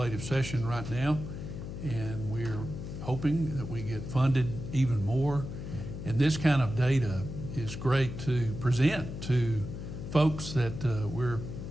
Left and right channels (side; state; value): left; noise; hum, 8 dB below the sound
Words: session right now, and we're hoping that we get funded even more. And this kind of data is great to present to folks that we're